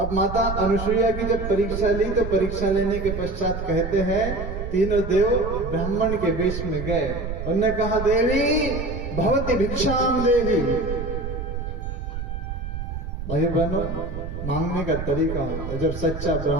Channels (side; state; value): right; noise; rumble, 6 dB below the sound